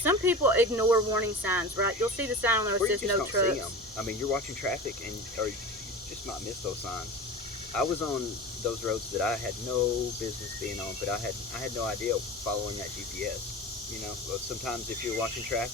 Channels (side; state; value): both; normal; correlation 0.32